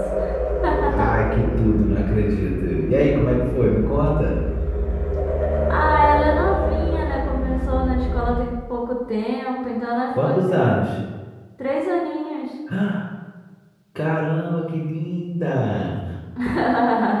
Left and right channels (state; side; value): identical; both; correlation 1.00